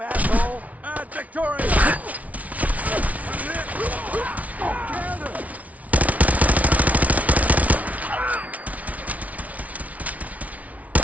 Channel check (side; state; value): left; late; 0.069 ms